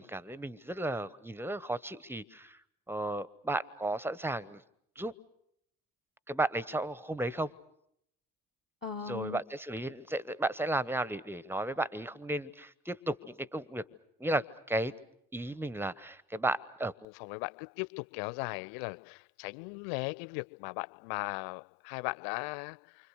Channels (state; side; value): drops out; right; at 17.1 s